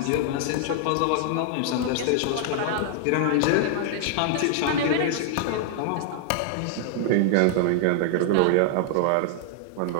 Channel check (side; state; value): both; different; correlation 0.00